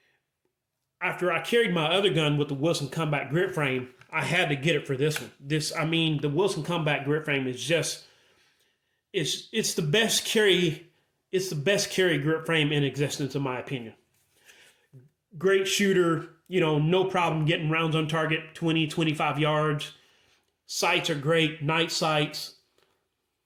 after I carried my other gun with the Wilson Combat grip frame, I had to get it for this one. The Wilson Combat grip frame is just, it's the best carry grip frame in existence, in my opinion. Great shooter, you know, no problem getting rounds on target, 20, 25 yards. Sights are great, night sights.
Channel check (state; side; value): identical; both; correlation 1.00